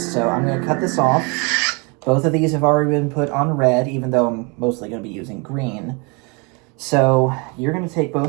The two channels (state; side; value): quieter; left; 31.3 dB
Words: So I'm going to cut this off. Both of these have already been put on red, even though I'm mostly going to be using green. So you're going to take